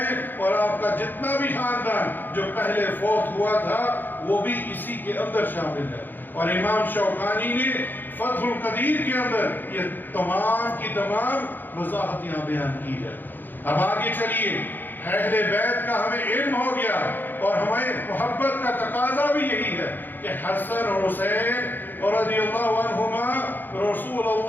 اور آپ کا جتنا بھی خاندان جو پہلے فوت ہوا تھا وہ بھی اسی کے اندر شامل ہے۔ اور امام شوکانی نے فتح القدیر کے اندر یہ تمام کی تمام وضاحت یہاں بیان کی ہے۔ اب آگے چلیے، اہل بیت کا ہمیں علم ہو گیا، اور ہمیں محبت کا تقاضا بھی یہی ہے کہ حسن اور حسین رضی اللہ عنہما رسول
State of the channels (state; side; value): late; right; 0.090 ms